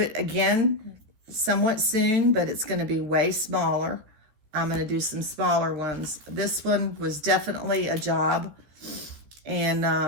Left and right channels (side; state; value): left; late; 14 ms